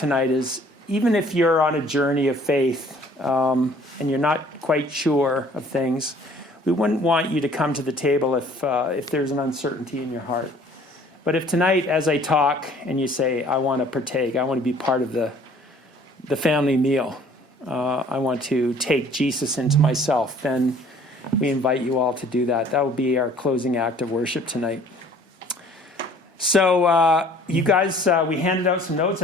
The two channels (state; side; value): normal; both; correlation 0.54